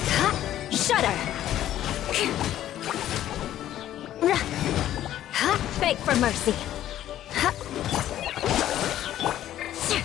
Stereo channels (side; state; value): right; quieter; 12.4 dB